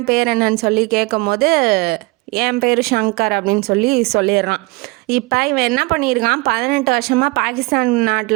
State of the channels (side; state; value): left; quieter; 25.1 dB